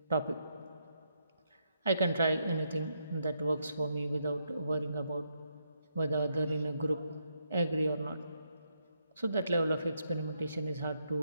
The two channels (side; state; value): both; inverted; correlation -0.78